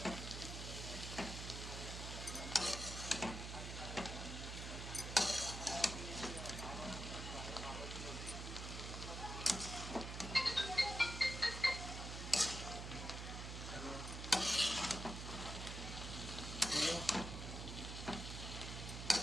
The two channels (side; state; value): right; noise; hum, 6 dB below the sound